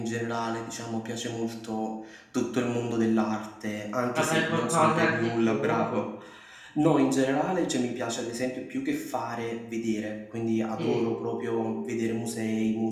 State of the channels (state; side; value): identical; both; correlation 1.00